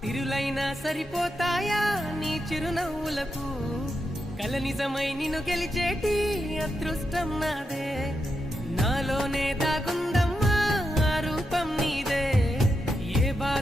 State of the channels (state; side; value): normal; both; correlation 0.85